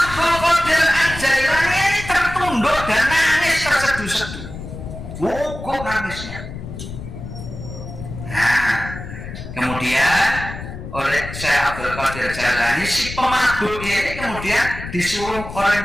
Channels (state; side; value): noise; left; rumble, 10 dB below the sound